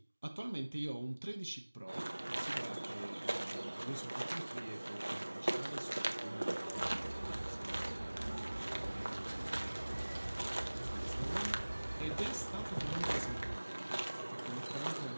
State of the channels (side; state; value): both; inverted; correlation -1.00